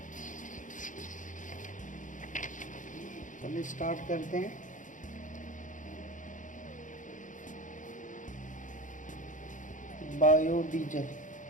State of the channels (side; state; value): right; late; 0.37 ms